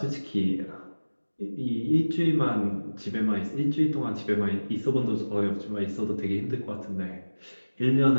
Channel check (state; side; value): inverted; both; correlation -1.00